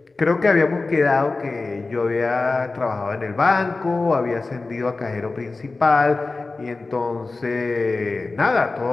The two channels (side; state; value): right; quieter; 3.6 dB